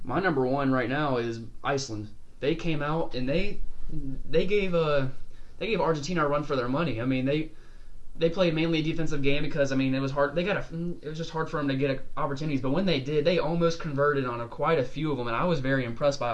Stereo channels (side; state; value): both; identical; correlation 1.00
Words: My number 1 right now is Iceland. They came out and they gave Argentina a run for their money. I mean, they played mainly a defensive game because it was hard. It was just hard for them to get opportunities. But when they did, they almost converted on quite a few of them, and I was very impressed by